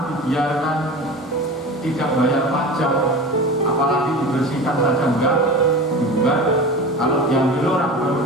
dibiarkan tidak bayar pajak, apalagi dibersihkan saja enggak, juga kalau diambil orang baru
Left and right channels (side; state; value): both; normal; correlation 0.32